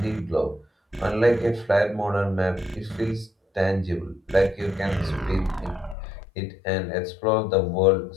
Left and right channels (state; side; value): drops out; right; at 6.0 s